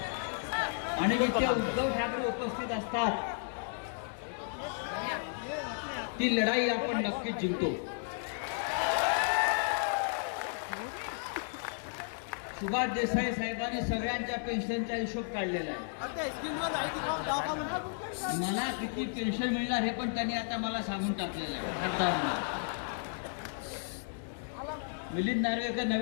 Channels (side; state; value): right; silent; digital silence